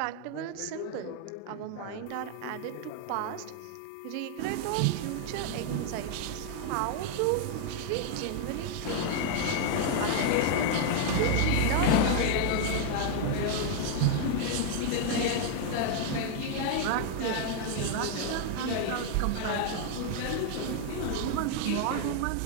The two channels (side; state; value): both; different; correlation 0.00